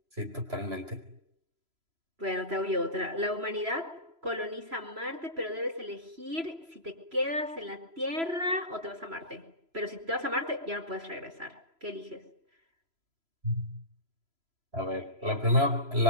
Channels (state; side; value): late; left; 3.0 ms